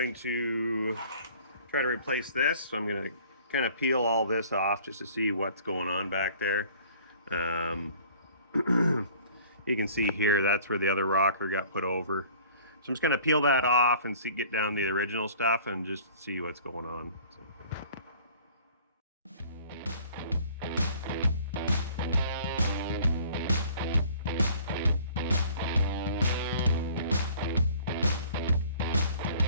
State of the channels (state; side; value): inverted; both; correlation -0.51